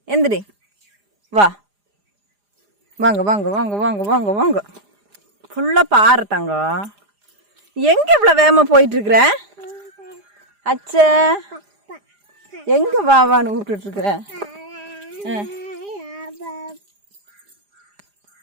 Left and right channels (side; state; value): left; late; 4.9 ms